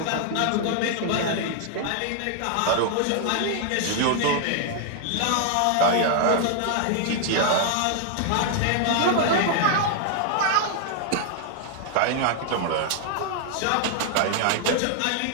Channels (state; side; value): different; both; correlation 0.00